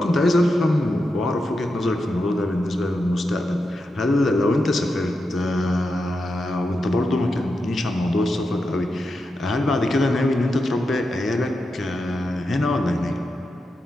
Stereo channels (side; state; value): both; normal; correlation 0.88